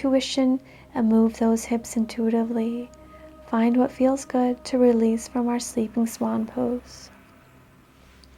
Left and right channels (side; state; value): both; identical; correlation 1.00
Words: and move those hips intuitively. Find what feels good to release from our Sleeping Swan pose.